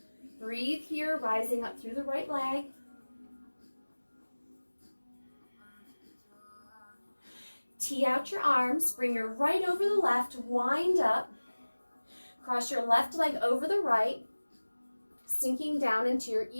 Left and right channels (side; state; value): both; inverted; correlation -1.00